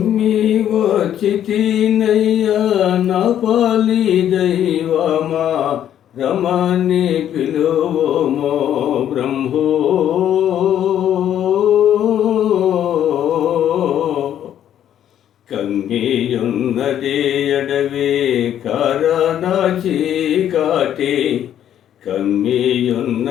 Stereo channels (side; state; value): right; quieter; 10.5 dB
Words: వచ్చితినయ్యా నా పాలి దైవమా, రమణి పిలువమో బ్రహ్మో. కమ్మియున్నది అడవి కారణ చీకాటి,